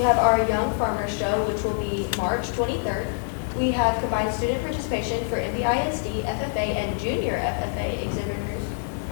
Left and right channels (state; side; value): silent; right; digital silence